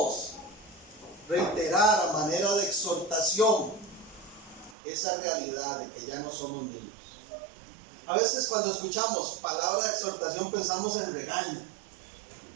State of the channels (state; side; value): drops out; left; at 4.8 s